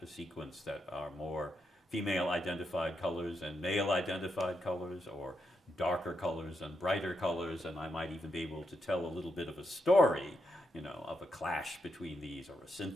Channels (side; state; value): both; normal; correlation 0.82